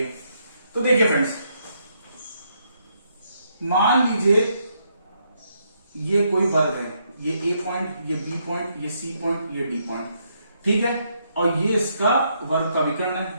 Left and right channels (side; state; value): both; inverted; correlation -0.76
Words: तो देखिए फ्रेंड्स, मान लीजिए ये कोई वर्ग है, ये ए पॉइंट, ये बी पॉइंट, ये सी पॉइंट, ये डी पॉइंट। ठीक है, और ये इसका वर्ग का विकर्ण